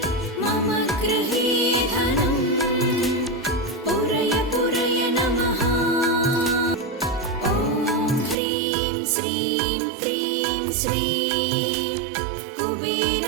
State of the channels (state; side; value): drops out; left; at 8.3 s